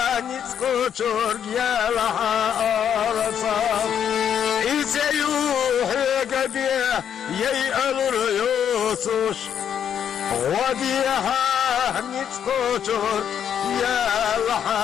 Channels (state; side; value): quieter; right; 8.8 dB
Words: نتكوشور يالها أرصاف يسيوح يقبي يأمر يوسوش وديها نتكوشور